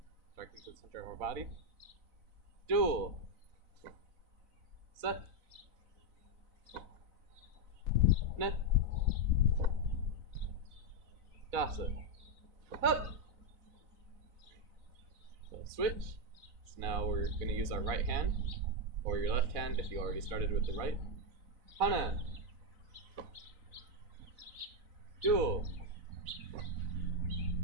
striking to the center of our body. Dual. Set. Net. Dasa. Up. So switch. So now we're going to use our right hand, or your left hand if you already started with the right. Hana. Dual.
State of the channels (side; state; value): left; late; 4.0 ms